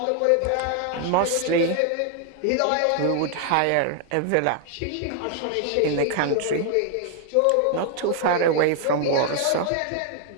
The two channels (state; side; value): different; both; correlation 0.00